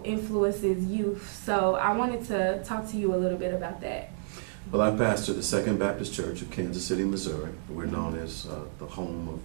influences youth. So I wanted to talk to you a little bit about that. Well, I pastor the Second Baptist Church of Kansas City, Missouri. We're known as the home of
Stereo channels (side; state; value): left; silent; digital silence